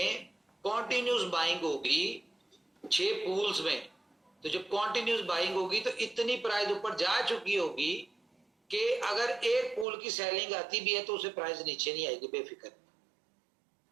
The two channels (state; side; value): drops out; left; at 9.9 s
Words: कॉन्टिन्यूस बाइंग होगी 6 पूल्स में, तो जब कॉन्टिन्यूस बाइंग होगी तो इतनी प्राइस ऊपर जा चुकी होगी कि अगर एक पूल की सेलिंग आती भी है तो उसे प्राइस नीचे नहीं आएगी, बेफिक्र।